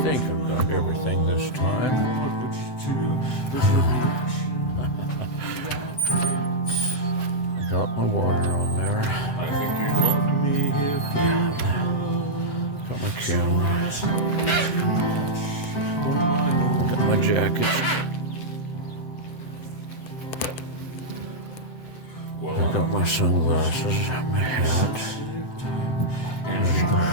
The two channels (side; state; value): right; late; 7.8 ms